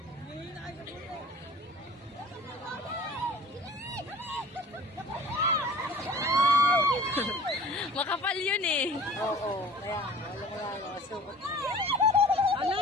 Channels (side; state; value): both; normal; correlation 0.45